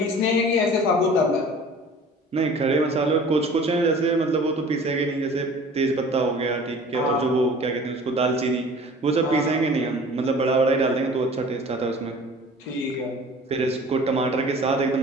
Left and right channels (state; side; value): normal; both; correlation 0.45